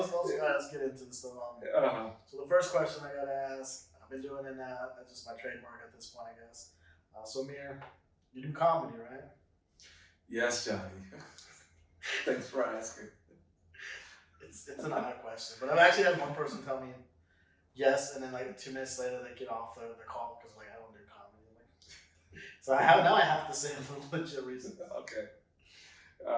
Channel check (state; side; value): identical; both; correlation 1.00